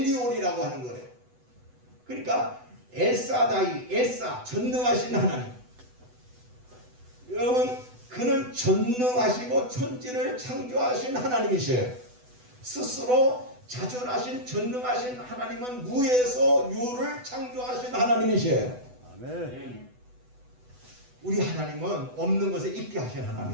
하는 거예요. 그러니까 엘사 전능하신 하나님. 여러분 그는 전능하시고 천지를 창조하신 하나님이셔요. 스스로 자존하신 전능하신 하나님은 무에서 유를 창조하신 하나님이셔요. 아멘. 우리 하나님은 없는 것에 있게 하신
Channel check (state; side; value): late; left; 8.1 ms